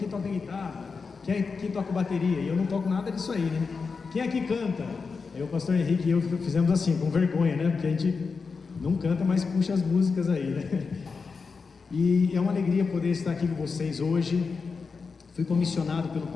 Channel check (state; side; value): quieter; right; 4.9 dB